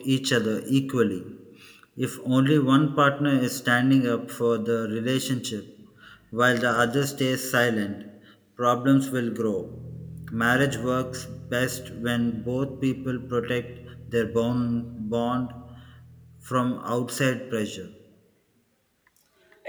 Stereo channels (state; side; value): identical; both; correlation 1.00